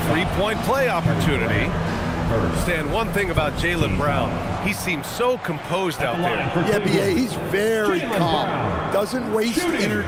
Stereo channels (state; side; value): identical; both; correlation 1.00